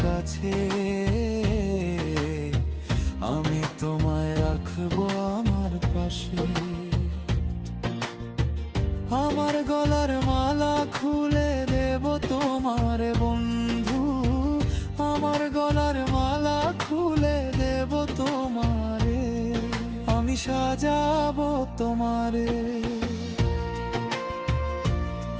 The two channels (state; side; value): identical; both; correlation 1.00